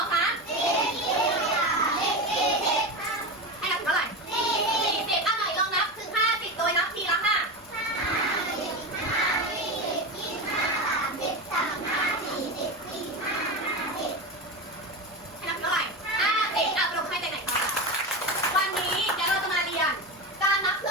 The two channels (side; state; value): both; normal; correlation 0.21